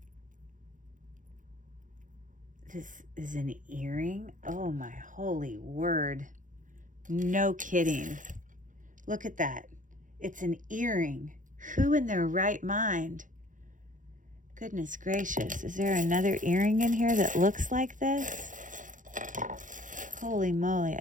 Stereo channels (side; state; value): left; late; 0.38 ms